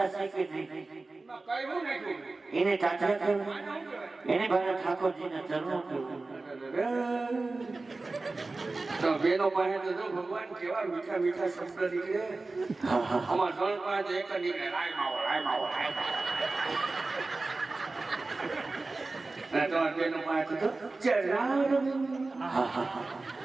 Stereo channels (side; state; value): left; quieter; 3.4 dB